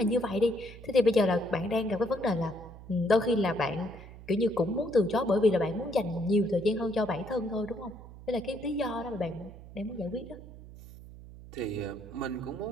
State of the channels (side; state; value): right; noise; hum, 16 dB below the sound